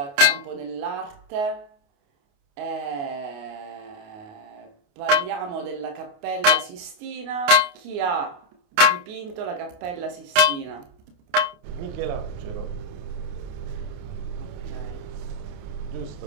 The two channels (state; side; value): late; left; 28 ms